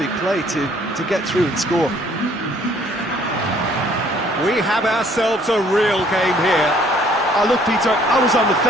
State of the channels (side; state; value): both; normal; correlation 0.60